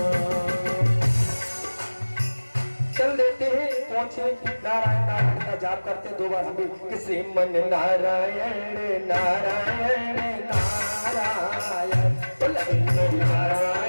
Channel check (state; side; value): inverted; both; correlation -1.00